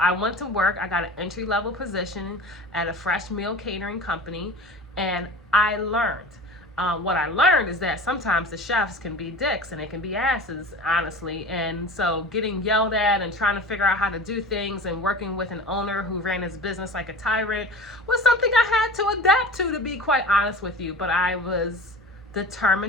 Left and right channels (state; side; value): normal; both; correlation 0.36